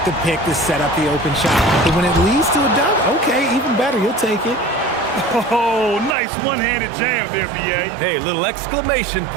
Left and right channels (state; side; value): drops out; left; at 6.2 s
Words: the pick to set up the open shot. But when it leads to a dunk, okay, even better, you'll take it. Oh, nice one-handed jam there, BA. Hey, little exclamation